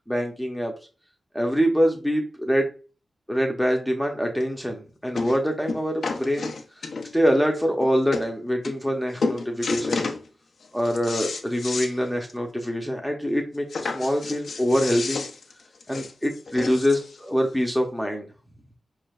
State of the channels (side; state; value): both; normal; correlation 0.95